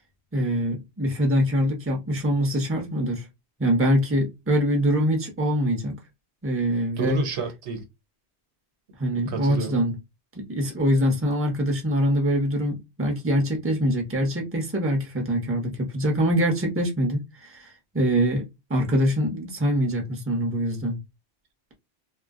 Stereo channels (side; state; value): both; normal; correlation 0.41